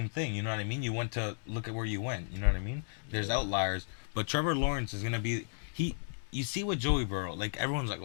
thing, you know what I mean? You went to look at where you went, you know what I mean? There's Yeah. outliers, but Trevor Lawrence is going to be you see with Joey Burrow, like everyone's like,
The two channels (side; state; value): right; silent; digital silence